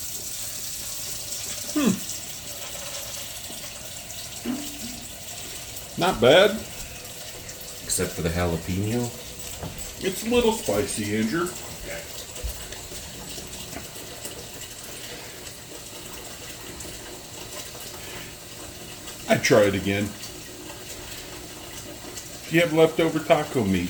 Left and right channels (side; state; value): both; identical; correlation 1.00